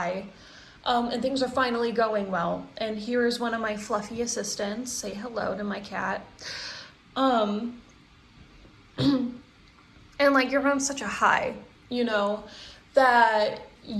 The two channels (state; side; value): identical; both; correlation 1.00